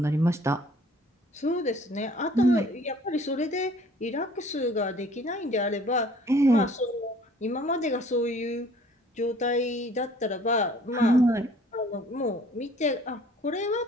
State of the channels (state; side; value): normal; both; correlation 0.54